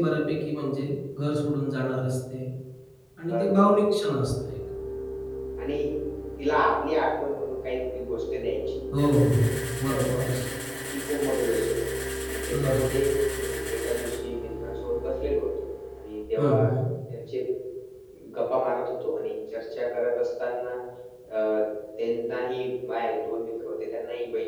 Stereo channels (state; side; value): identical; both; correlation 1.00